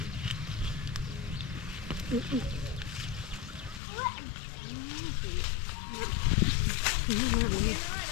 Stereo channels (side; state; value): right; drops out; at 3.8 s